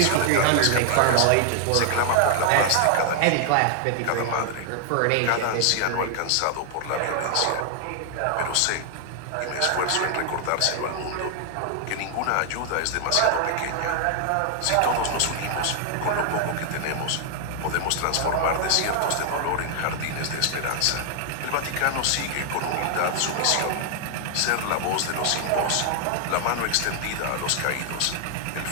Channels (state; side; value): different; both; correlation 0.00